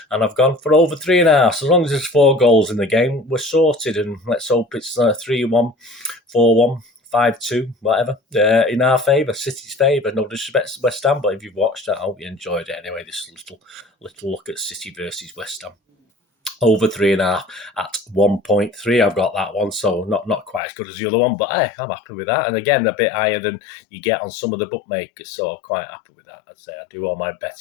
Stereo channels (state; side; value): drops out; right; at 20.6 s